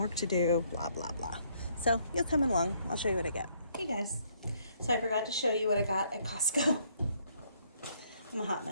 to do, blah, blah, blah. So you'll come along. I'll show you what I get. Hey guys. So I forgot to show you what I got at Costco. I'm a hot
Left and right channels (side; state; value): both; inverted; correlation -0.68